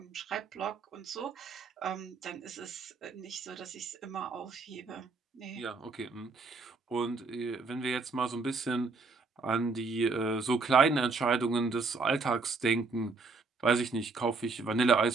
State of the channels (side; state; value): left; quieter; 4.1 dB